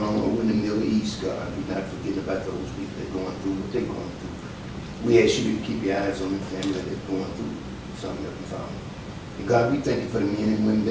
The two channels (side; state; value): both; identical; correlation 1.00